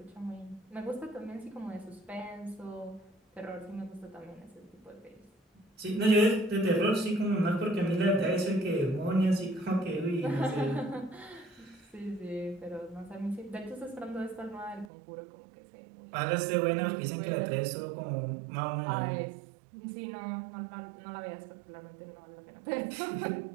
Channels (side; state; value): left; drops out; at 14.9 s